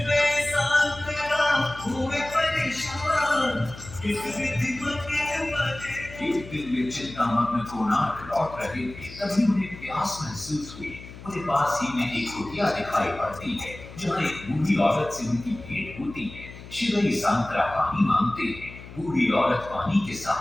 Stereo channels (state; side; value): noise; left; hum, 15 dB below the sound